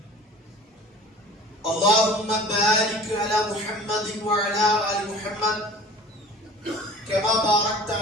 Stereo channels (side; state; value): both; normal; correlation 0.44